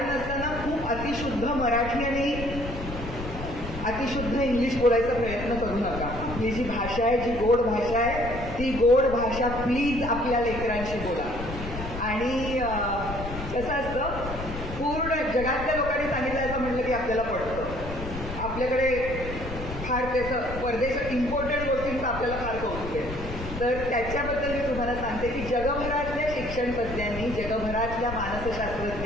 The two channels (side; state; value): left; noise; rumble, 8 dB below the sound